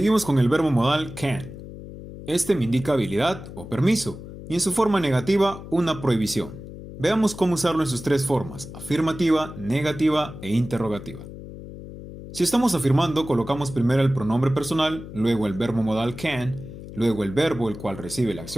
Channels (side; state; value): left; noise; hum, 13 dB below the sound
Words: con el verbo modal can. Este me indica habilidad o permiso, y en su forma negativa, una prohibición. Veamos cómo usarlo en sus tres formas: afirmativa, negativa e interrogativa. Si estamos afirmando, colocamos primero el pronombre personal, luego el verbo modal can, luego el verbo el cual recibe la